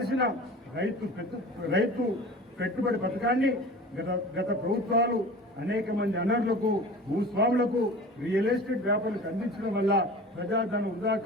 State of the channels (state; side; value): normal; both; correlation 0.38